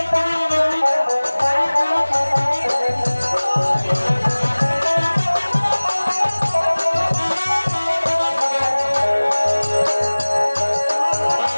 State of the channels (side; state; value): both; inverted; correlation -1.00